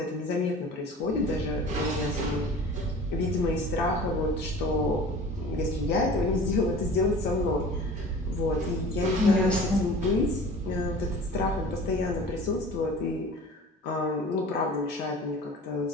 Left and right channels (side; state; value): both; normal; correlation 0.41